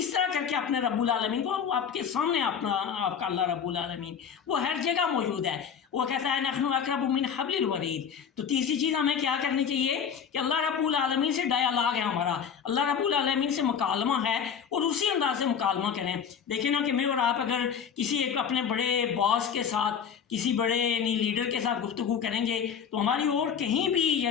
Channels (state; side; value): quieter; right; 7.4 dB